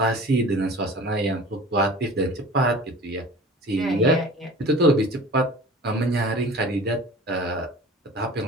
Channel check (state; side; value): normal; both; correlation 0.42